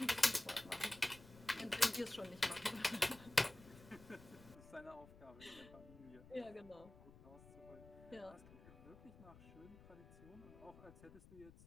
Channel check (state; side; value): noise; left; rumble, 19 dB below the sound